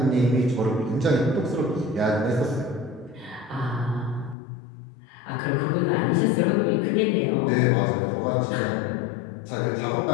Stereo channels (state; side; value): drops out; right; at 4.4 s